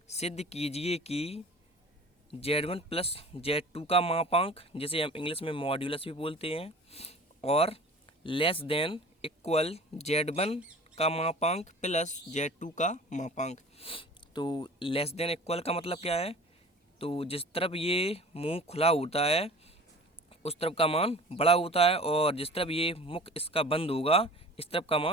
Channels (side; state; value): both; normal; correlation 0.42